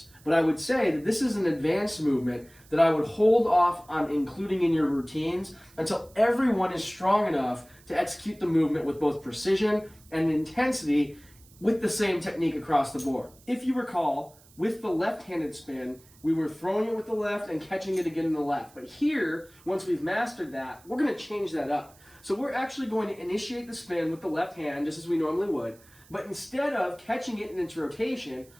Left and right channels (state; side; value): noise; right; hiss, 27 dB below the sound